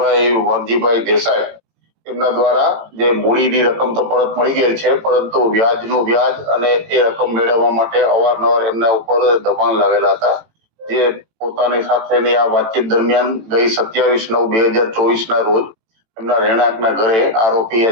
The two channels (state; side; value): late; left; 18 ms